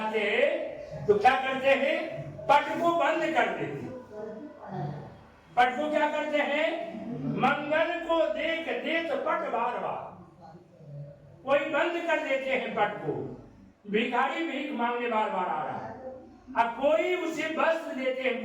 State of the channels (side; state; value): both; identical; correlation 1.00